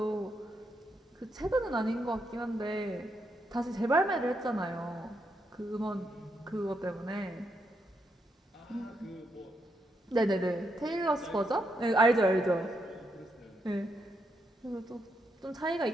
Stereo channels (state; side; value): normal; both; correlation 0.80